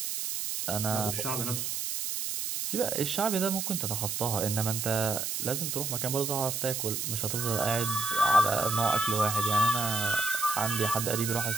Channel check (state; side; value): noise; right; hiss, 2 dB below the sound